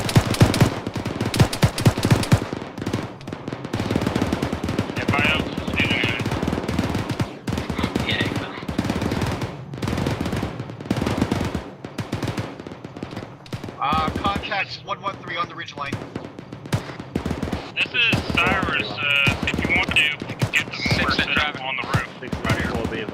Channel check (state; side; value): identical; both; correlation 1.00